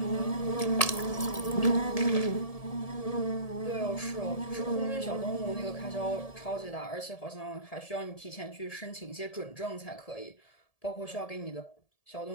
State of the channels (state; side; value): late; right; 1.7 ms